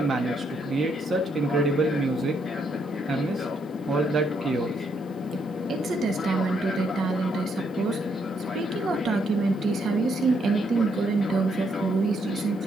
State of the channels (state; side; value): noise; left; hiss, 30 dB below the sound